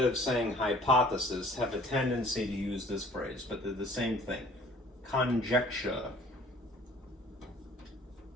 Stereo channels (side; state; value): both; normal; correlation 0.53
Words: of saying hypothesis, have a tendency to use this phrase, but they're the same thing. Conjecture.